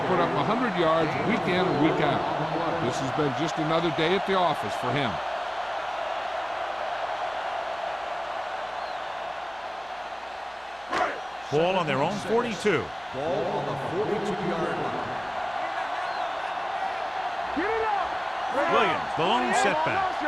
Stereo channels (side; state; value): right; noise; hum, 29 dB below the sound